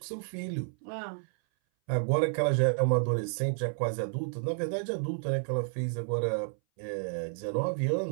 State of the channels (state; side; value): silent; left; 57 dB below the other